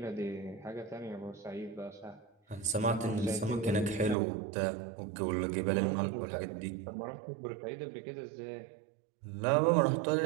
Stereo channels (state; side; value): drops out; left; at 4.2 s